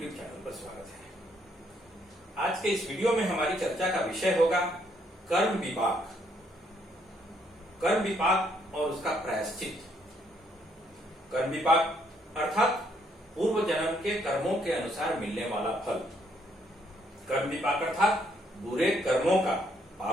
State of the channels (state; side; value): normal; both; correlation 0.71